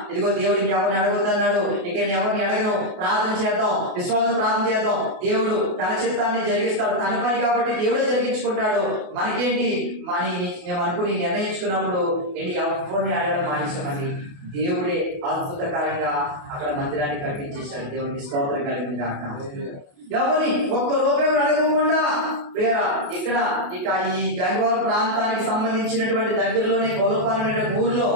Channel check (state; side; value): late; left; 28 ms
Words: ఇదిగో దేవుడు ఇంకెవరిని అడగొద్దు అన్నాడు, ఇక నేను ఎవరిని అడగను, ప్రార్థన చేద్దాం, విశ్వాసం ప్రార్థన చేద్దాం, దేవుడు తన చిత్తాన్ని జరిగిస్తాడు, తన పని కాబట్టి దేవుడే జరిగించుకుంటాడు, మనకేంటి మేము అనుకుని నిర్ణయించుకున్నప్పుడు ఏంటి ఎవరిని అడగడం మానేసామండి. దేవుడే అద్భుతకరంగా అక్కడ మందిరాన్ని కట్టించేశాడు. దేవునికి స్తోత్రం కలిగింది కాక. ఎవరిని ఒక్క రూపాయి కూడా అడగకుండా ఇక్కడ ఈ గంగవరం ప్రాంతానికి సంబంధించినటువంటి దగ్గరలోనే గొల్లపాలెం అనే ఊర్లో